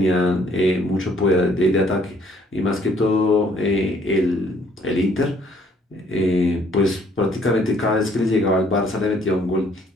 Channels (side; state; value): both; normal; correlation 0.63